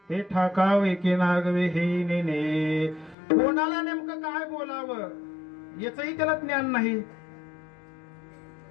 हे ठाकावे की नागवे हे नेने. कोणाला नेमकं काय बोलावं याचंही त्याला ज्ञान नाही.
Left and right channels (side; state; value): right; drops out; at 3.2 s